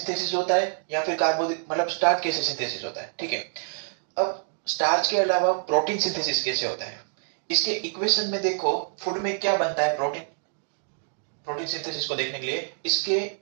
होता है या फिर कार्बोदि मतलब स्टार्च कैसे सिंथेसिस होता है। ठीक है, अब स्टार्च के अलावा प्रोटीन सिंथेसिस कैसे होता है, इसके इक्वेशन में देखो फूड में क्या बनता है। प्रोटीन प्रोटीन सिंथेसिस को देखने के लिए इसके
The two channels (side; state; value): left; silent; digital silence